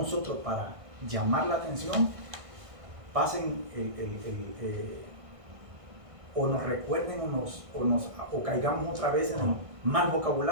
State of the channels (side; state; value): left; late; 1.6 ms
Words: para llamar la atención pasen o nos recuerden o caigamos otra vez en el mal